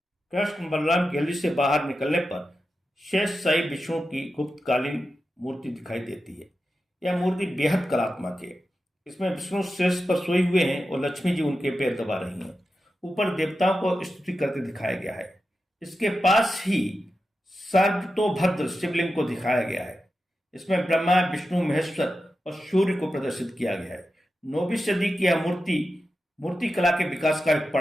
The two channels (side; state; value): both; normal; correlation 0.91